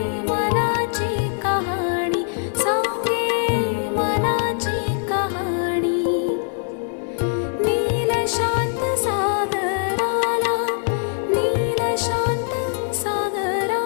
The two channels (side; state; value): right; silent; digital silence